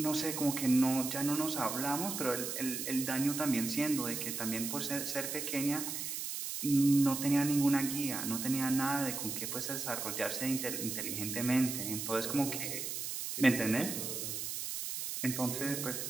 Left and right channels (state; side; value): noise; right; hiss, 4 dB below the sound